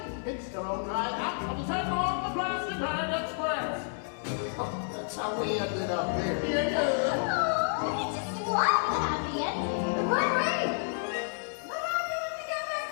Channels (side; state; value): right; silent; 58 dB below the other